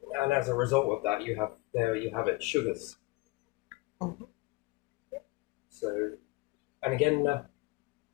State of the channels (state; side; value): quieter; right; 22.5 dB